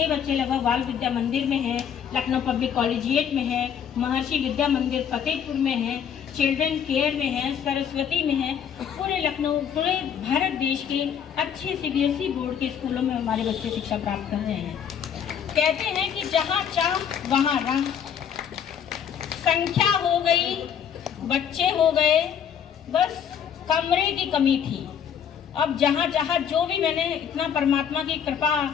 बच्चे लगभग बाल विद्या मंदिर में है, लखनऊ पब्लिक कॉलेजिएट में है, महर्षि विद्या मंदिर फतेहपुर में है, चिल्ड्रन केयर में है, सरस्वती में है। पूरे लखनऊ, पूरे भारत देश के अच्छे सीबीएसई बोर्ड के स्कूलों में हमारे बच्चे शिक्षा प्राप्त कर रहे हैं। कहते हैं कि जहाँ चाह वहाँ राह, संख्या हो गई, बच्चे हो गए, बस कमरे की कमी थी। अब जहाँ जहाँ जो भी, मैंने इतना परमात्मा की कृपा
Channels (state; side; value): quieter; right; 8.3 dB